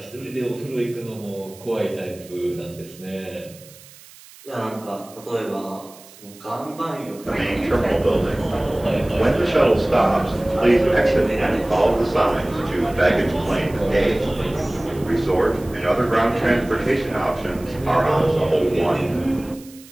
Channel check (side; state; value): right; noise; hiss, 22 dB below the sound